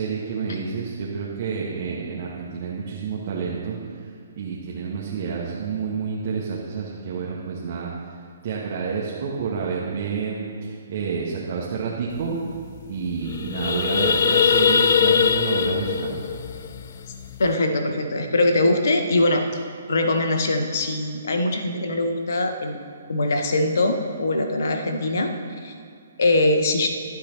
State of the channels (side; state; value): both; inverted; correlation -0.64